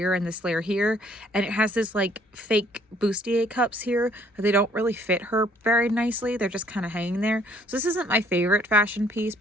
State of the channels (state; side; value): normal; both; correlation 0.62